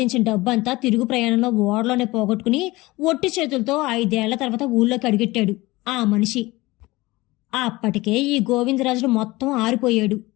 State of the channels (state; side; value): quieter; right; 20.5 dB